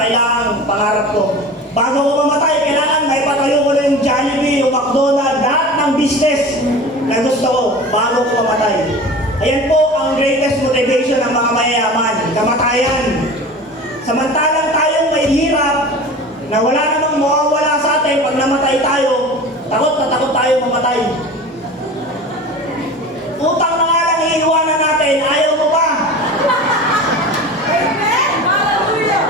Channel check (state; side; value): normal; both; correlation 0.35